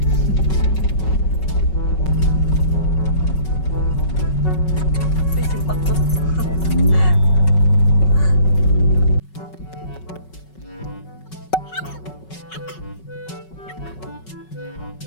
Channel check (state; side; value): late; right; 5.3 ms